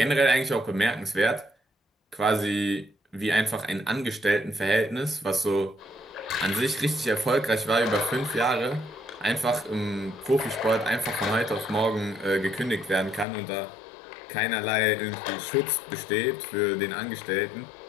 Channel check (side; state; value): right; drops out; at 13.2 s